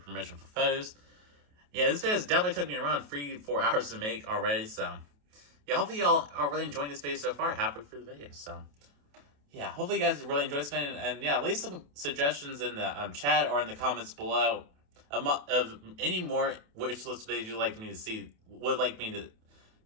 for photos. Yeah, this video has definitely took me around 3-4 hours to make already, so yeah, hopefully y'all are really enjoying this video so far, halfway through the video, so yeah, hopefully you guys really enjoyed this video, and yeah, leave some suggestions in the chat or in the comments below of any more wish list videos you'd like me to see, would like me to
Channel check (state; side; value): late; left; 28 ms